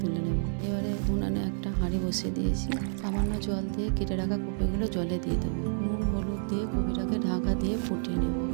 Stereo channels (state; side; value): silent; left; 58 dB below the other